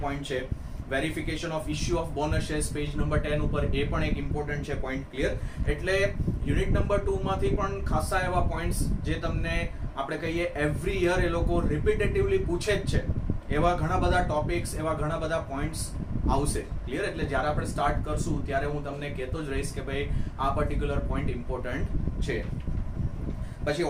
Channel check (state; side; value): identical; both; correlation 1.00